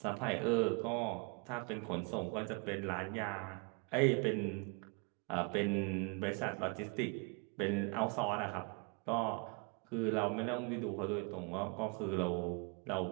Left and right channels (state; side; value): quieter; left; 34.0 dB